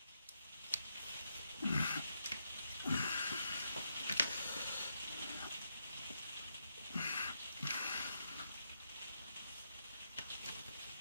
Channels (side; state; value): both; inverted; correlation -0.81